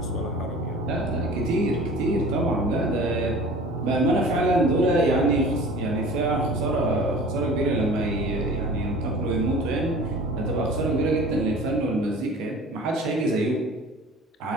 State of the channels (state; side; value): normal; both; correlation 0.42